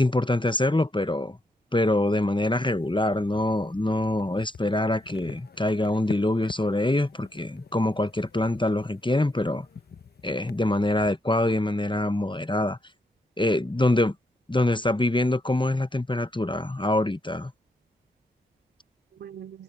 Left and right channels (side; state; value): both; normal; correlation 0.78